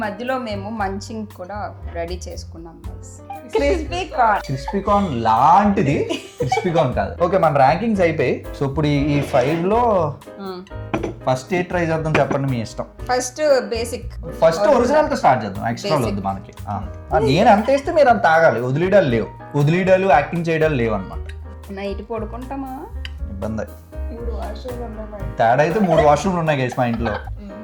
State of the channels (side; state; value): both; identical; correlation 1.00